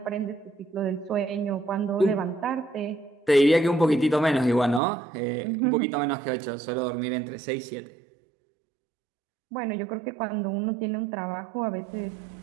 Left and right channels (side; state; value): left; drops out; at 4.8 s